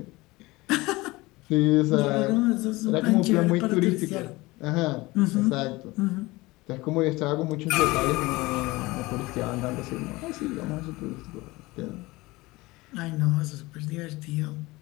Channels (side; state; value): right; quieter; 21.3 dB